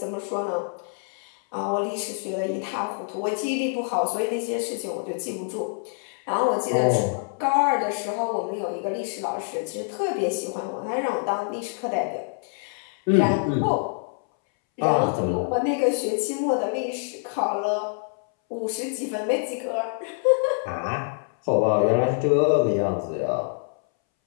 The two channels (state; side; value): silent; right; 61 dB below the other